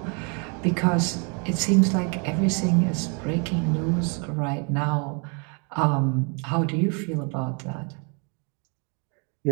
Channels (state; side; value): quieter; left; 35.9 dB